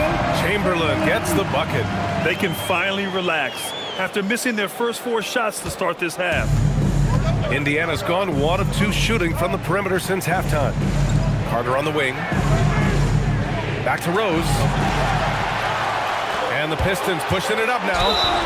Chamberlain gets the bucket. They can finally relax after missing their first 4 shots to start this half. Indiana's gone 1 of 2 shooting from the perimeter since halftime. Carter on the wing. Back to Rose. And the Pistons pushing it up now.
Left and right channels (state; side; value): identical; both; correlation 1.00